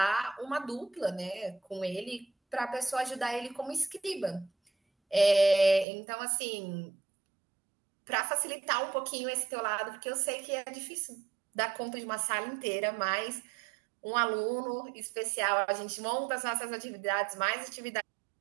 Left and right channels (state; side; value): drops out; left; at 5.9 s